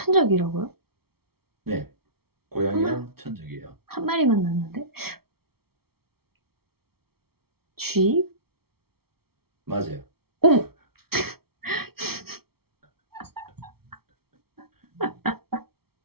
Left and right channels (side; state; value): left; late; 0.95 ms